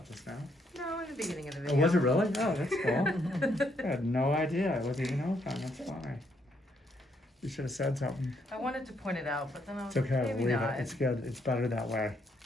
Just now? No, in the beginning of the Oh, video. was it really? Oh, that's cool. I had no idea. It wasn't even open. That's why. You should have said something. I wanted to point it out, but then I was It's okay. like, maybe Leave not. it. It's good. It's better that way.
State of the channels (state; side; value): normal; both; correlation 0.73